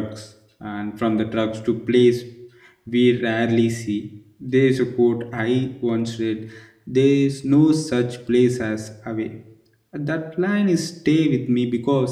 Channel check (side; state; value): both; identical; correlation 1.00